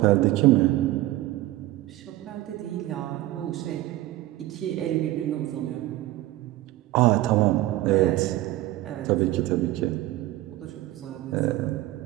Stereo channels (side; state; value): left; quieter; 16.4 dB